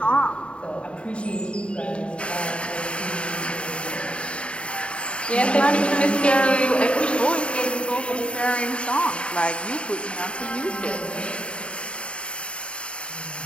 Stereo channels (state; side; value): late; right; 0.058 ms